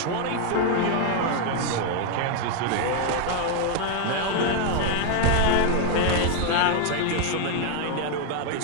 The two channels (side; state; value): both; different; correlation 0.01